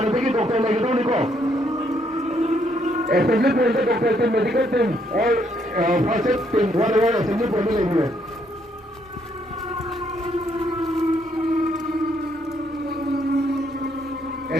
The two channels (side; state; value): both; normal; correlation 0.72